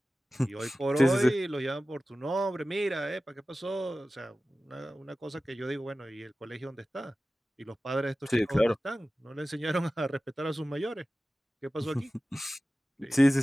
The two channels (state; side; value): normal; both; correlation 0.96